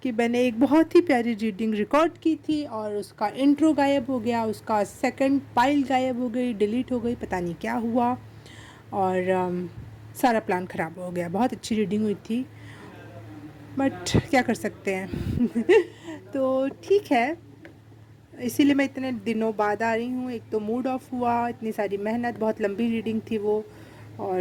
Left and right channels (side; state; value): both; identical; correlation 1.00